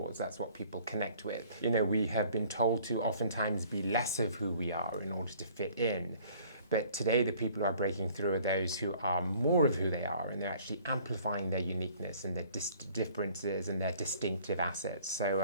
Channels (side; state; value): both; inverted; correlation -0.54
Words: That's what people connect with. You know, we have been told to oftentimes be less of who we are in order to fit in. But today, the people who are breaking through are those who are more of who they are, and they're actually amplifying their uniqueness and their differences and their distinctive assets.